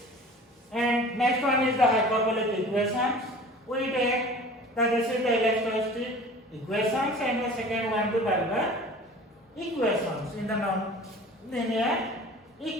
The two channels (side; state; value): both; normal; correlation 0.43